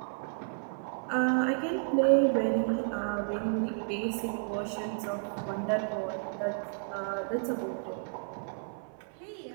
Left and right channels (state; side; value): silent; left; 56 dB below the other